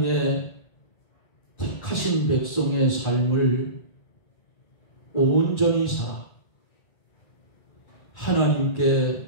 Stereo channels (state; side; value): late; right; 1.4 ms